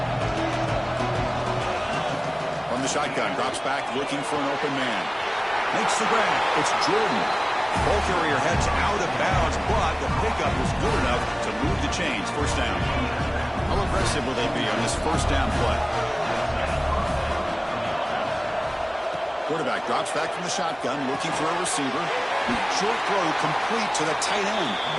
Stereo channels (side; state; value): both; identical; correlation 1.00